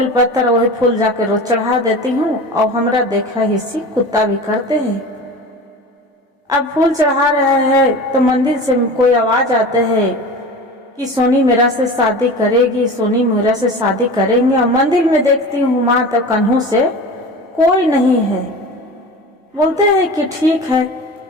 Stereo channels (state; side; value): normal; both; correlation 0.34